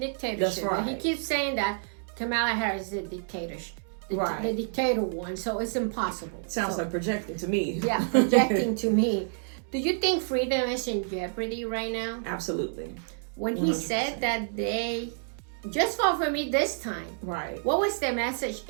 That's right. But he keeps saying that Kamala Harris is a dictatorship. Right. The dictator one, so it's impossible. Sounds like projecting to me. Yeah, projecting to me. Do you think freedom is in jeopardy right now? Absolutely. When he 100%. Said that they just vote for me this time. Right. What was the message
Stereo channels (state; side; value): silent; left; digital silence